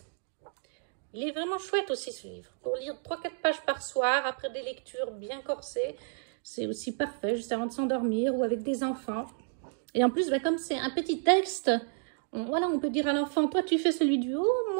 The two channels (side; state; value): left; silent; 57 dB below the other